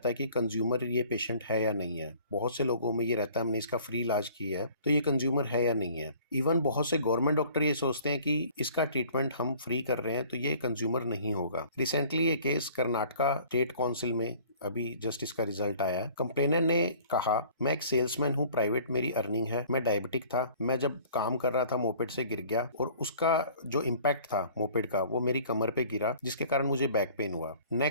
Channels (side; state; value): both; inverted; correlation -0.51